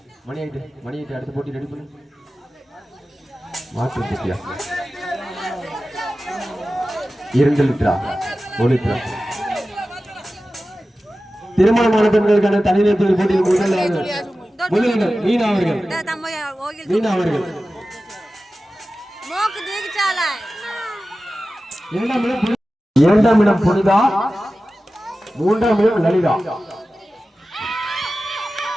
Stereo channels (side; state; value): both; normal; correlation 0.95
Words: மணி ஆயிட்டு. அடுத்த போட்டி ரெடி பண்ணு. மாற்று போட்டியா? 2 லிட்டரா 1 லிட்டரா? திருமணமான பெண்களுக்கான தனிநேர் போட்டியில் முதலிடம் மீனா அவர்கள். இரண்டாம் இடம் புனிதா. மூன்றாம் இடம் லலிதா.